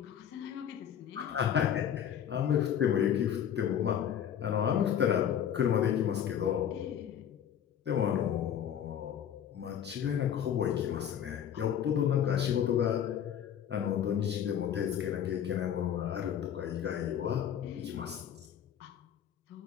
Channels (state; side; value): quieter; right; 9.3 dB